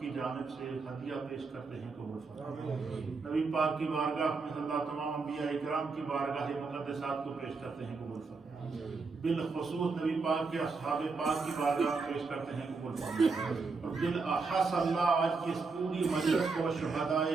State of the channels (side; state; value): left; quieter; 4.3 dB